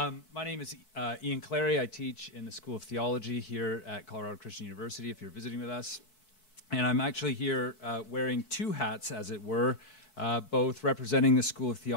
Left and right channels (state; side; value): late; right; 4.6 ms